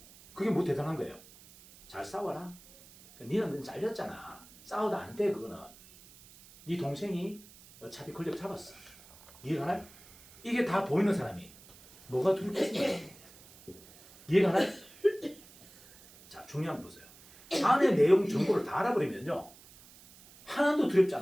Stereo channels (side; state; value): right; noise; hiss, 22 dB below the sound